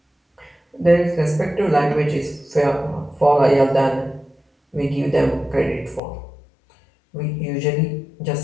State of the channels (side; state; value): right; drops out; at 6.0 s